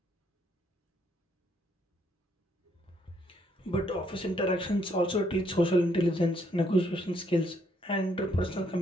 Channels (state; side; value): normal; both; correlation 0.71